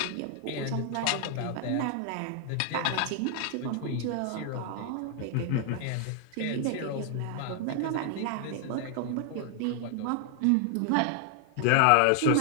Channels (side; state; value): both; different; correlation 0.00